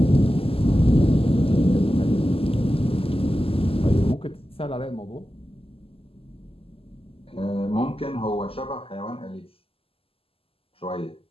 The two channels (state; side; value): late; right; 0.27 ms